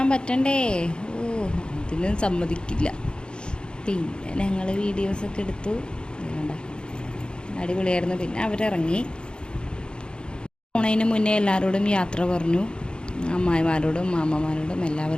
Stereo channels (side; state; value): right; late; 0.051 ms